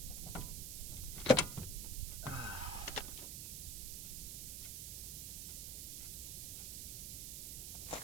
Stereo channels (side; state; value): right; noise; hiss, 4 dB below the sound